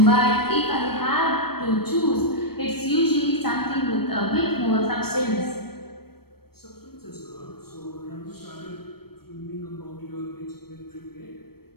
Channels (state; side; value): late; right; 0.96 ms